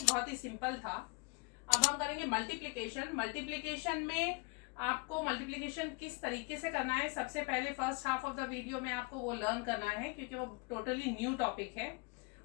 बहुत ही सिंपल था। अब हम करेंगे मल्टीप्लिकेशन। मल्टीप्लिकेशन में आपको मल्टीप्लिकेशन किस तरीके से करना है, सबसे पहले first half of the video में आपको वो लर्न करना है, क्योंकि वो टोटली न्यू टॉपिक है।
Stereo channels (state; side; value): quieter; right; 30.5 dB